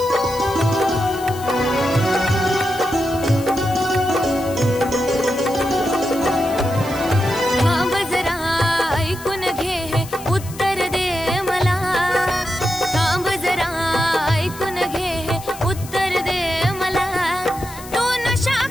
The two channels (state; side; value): noise; left; hiss, 16 dB below the sound